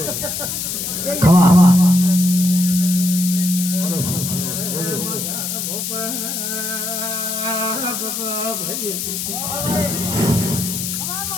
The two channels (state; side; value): noise; left; hiss, 3 dB below the sound